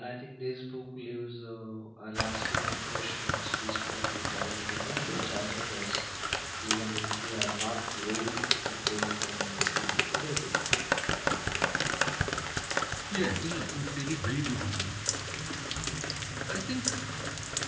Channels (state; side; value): identical; both; correlation 1.00